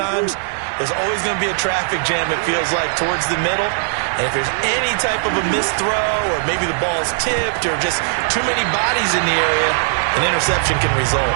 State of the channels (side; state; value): left; silent; digital silence